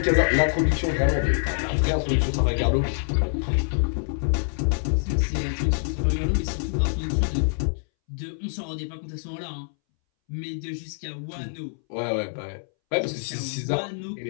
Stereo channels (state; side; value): silent; right; 61 dB below the other